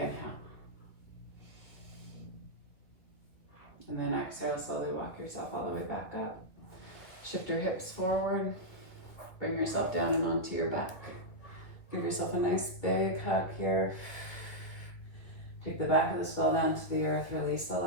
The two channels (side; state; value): right; late; 2.4 ms